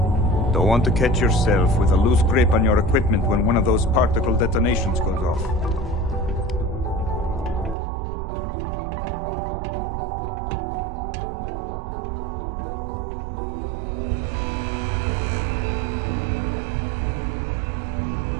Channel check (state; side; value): drops out; left; at 7.8 s